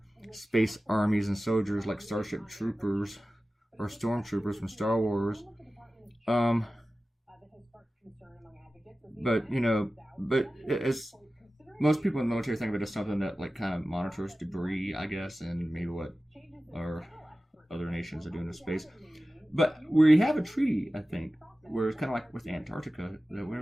space armies and soldiers like Starship Troopers or Stormtroopers from Star Wars, but it's, most people in the military think of it as something that like kind of monitors debris, I guess, and maybe what our other nations are doing in space. But we have a treaty, I think, where it's kind of like with Antarctica, that we're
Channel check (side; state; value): both; normal; correlation 0.95